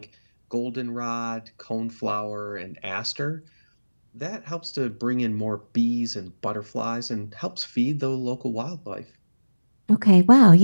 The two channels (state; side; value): inverted; both; correlation -1.00